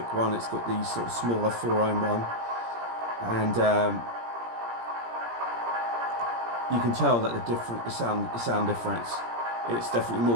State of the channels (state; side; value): late; left; 17 ms